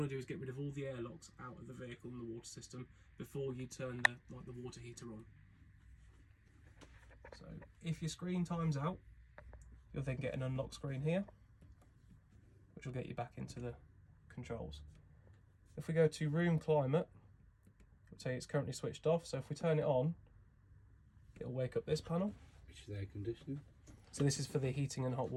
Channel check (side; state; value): both; identical; correlation 1.00